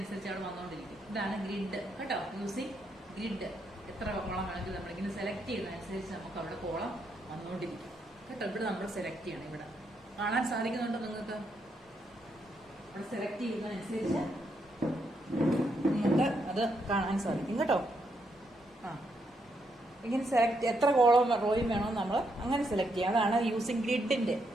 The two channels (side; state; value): both; normal; correlation 0.78